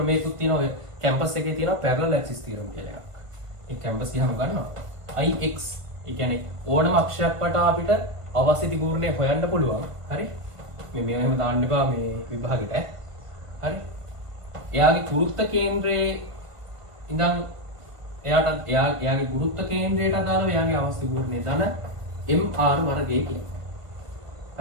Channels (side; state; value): left; late; 1.5 ms